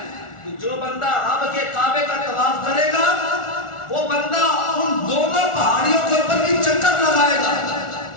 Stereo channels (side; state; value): right; late; 1.4 ms